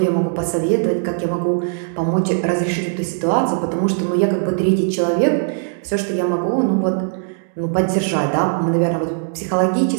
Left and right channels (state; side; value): silent; left; digital silence